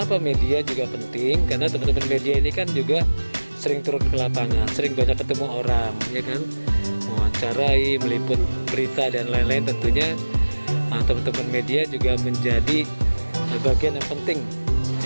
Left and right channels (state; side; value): inverted; both; correlation -1.00